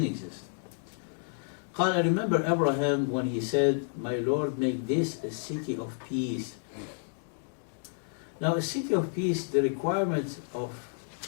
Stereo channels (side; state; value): right; silent; digital silence